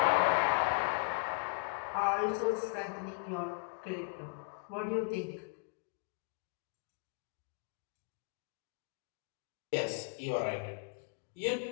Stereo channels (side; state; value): right; quieter; 36.1 dB